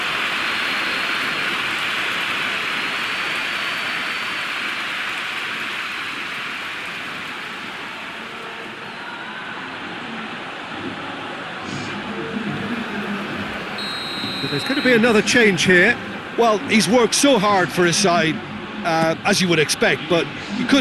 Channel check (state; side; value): identical; both; correlation 1.00